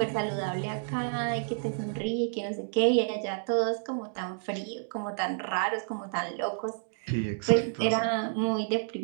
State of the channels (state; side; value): silent; left; digital silence